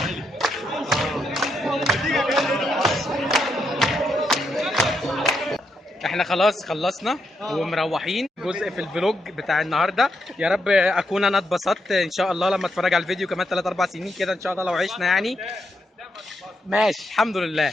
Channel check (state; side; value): normal; both; correlation 0.81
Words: احنا خلاص خلصنا ومروحين جزء في الفلوج بتاع النهارده. يا رب اكون انا اتبسطت ان شاء الله لما اتفرج على الفيديو كمان 3 4 سنين كده ان شاء الله لو عشنا يعني. ماشي الحمد